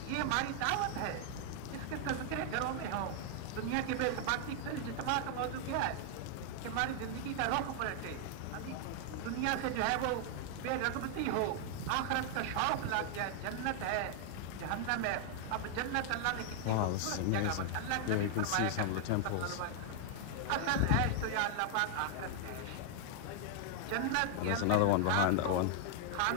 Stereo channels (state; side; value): different; both; correlation 0.00